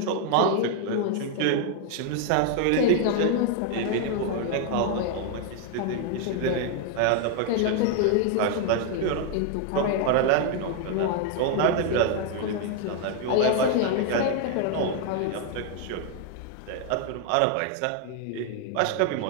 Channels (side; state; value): both; different; correlation 0.00